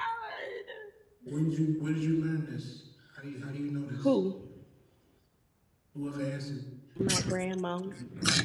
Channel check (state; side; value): identical; both; correlation 1.00